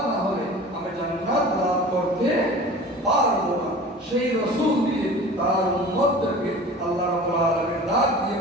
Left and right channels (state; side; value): normal; both; correlation 0.39